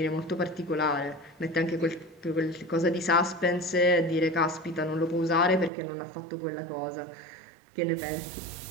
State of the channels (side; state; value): left; drops out; at 5.7 s